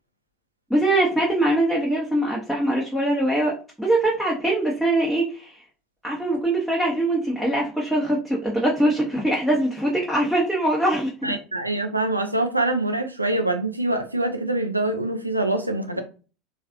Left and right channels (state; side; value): normal; both; correlation 0.40